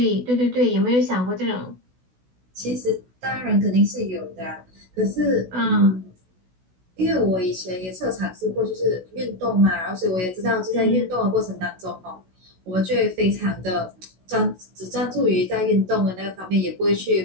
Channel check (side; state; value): left; late; 16 ms